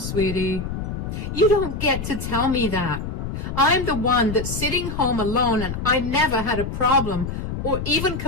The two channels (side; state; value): left; noise; rumble, 5 dB below the sound